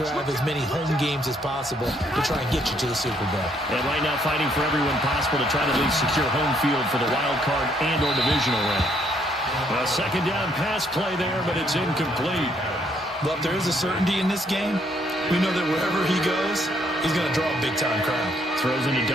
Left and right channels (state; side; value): normal; both; correlation 0.69